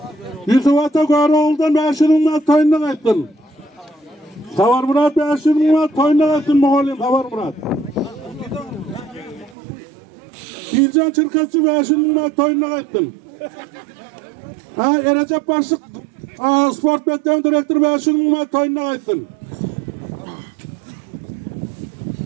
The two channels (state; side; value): drops out; left; at 9.6 s